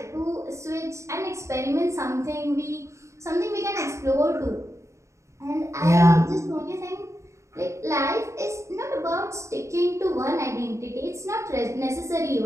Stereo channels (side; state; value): left; late; 0.14 ms